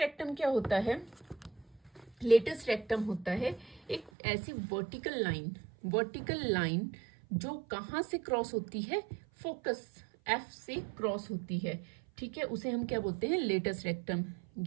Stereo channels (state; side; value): drops out; left; at 4.1 s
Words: क्या होता है, लेटस रेक्टम होता है एक ऐसी वर्टिकल लाइन वर्टिकल लाइन जो कहाँ से क्रॉस होती है, फोकस एफ से क्रॉस होती है, ठीक है, उसे हम क्या बोलते हैं, लेटस रेक्टम।